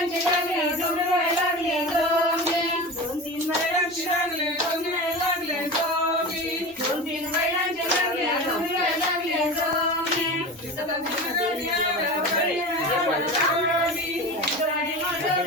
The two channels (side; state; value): both; normal; correlation 0.29